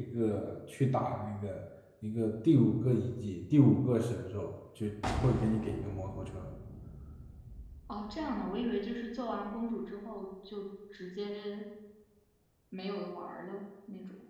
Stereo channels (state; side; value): identical; both; correlation 1.00